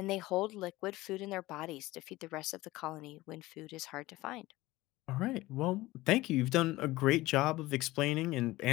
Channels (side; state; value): right; quieter; 18.7 dB